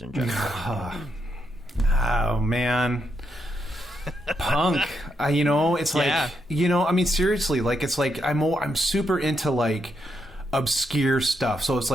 in general? Oh man. Punk, it's like, I mean, seriously, like, it's like I'm super into like obscure stuff. So it's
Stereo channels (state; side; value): normal; both; correlation 0.80